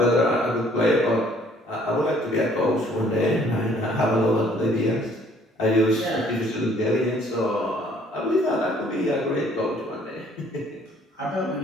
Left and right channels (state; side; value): normal; both; correlation 0.60